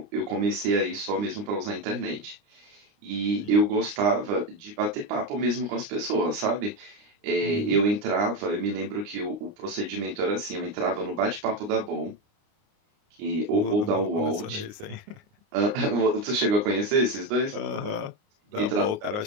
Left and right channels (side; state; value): left; late; 29 ms